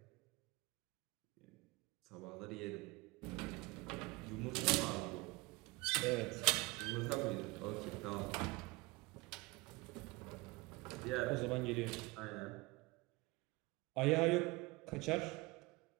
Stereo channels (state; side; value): quieter; left; 23.8 dB